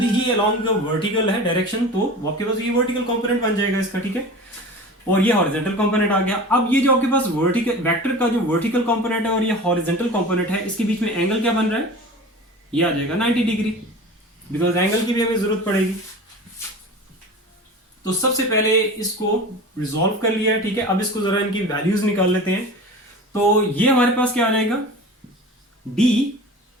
ही अलोंग वर्टिकल है डायरेक्शन, तो आपके पास ये वर्टिकल कंपोनेंट बन जाएगा इसका, ठीक है, और ये हॉरिजेंटल कंपोनेंट आ गया। अब ये जो आपके पास वर्टिकल वेक्टर का जो वर्टिकल कंपोनेंट है और ये हॉरिजेंटल कंपोनेंट है, इसके बीच में एंगल क्या बन रहा है, ये आ जाएगा 90 डिग्री, बिकॉज एंगल की भी हमें जरूरत पड़ेगी। तो सबसे पहले इसको रिजॉल्व कर लिया है, ठीक है। अब इसको जरा इनकी वैल्यूज निकाल लेते हैं। तो ये हमारे पास क्या आ जाएगा,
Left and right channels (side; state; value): both; normal; correlation 0.35